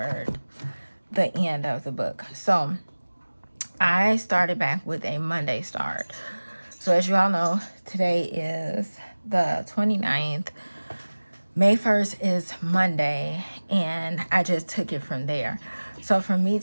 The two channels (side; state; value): both; inverted; correlation -1.00